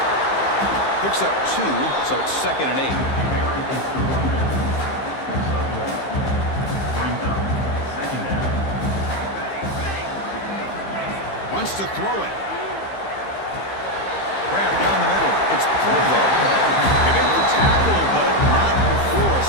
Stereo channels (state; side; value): late; right; 15 ms